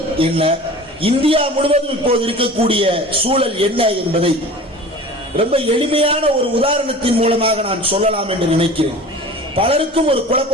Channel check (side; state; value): both; normal; correlation 0.39